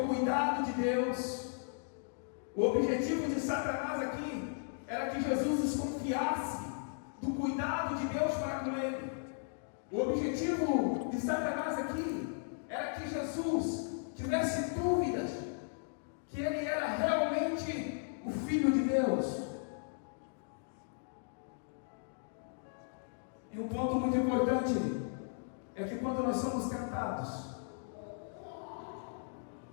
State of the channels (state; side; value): silent; right; digital silence